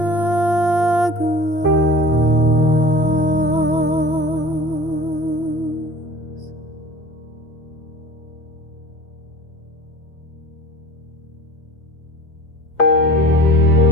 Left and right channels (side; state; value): right; late; 2.8 ms